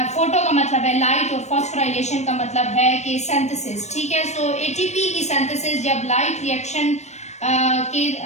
का मतलब है लाइट और फॉस्फोराइलेशन का मतलब है कि सिंथेसिस, ठीक है। सो एटीपी की सिंथेसिस जब लाइट रिएक्शन के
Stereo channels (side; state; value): right; late; 0.33 ms